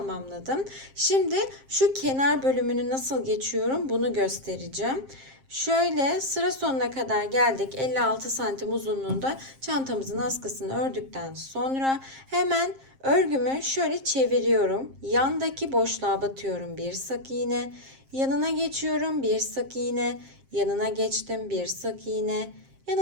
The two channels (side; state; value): left; late; 7.5 ms